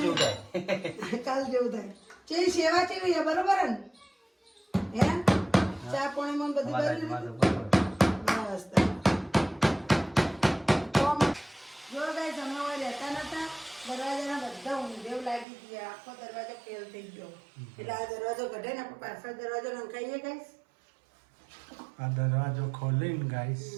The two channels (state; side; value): drops out; left; at 15.5 s